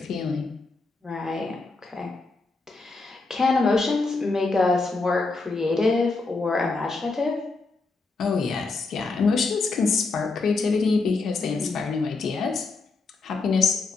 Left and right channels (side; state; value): right; quieter; 3.8 dB